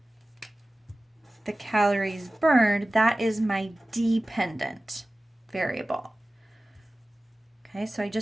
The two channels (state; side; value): normal; both; correlation 0.97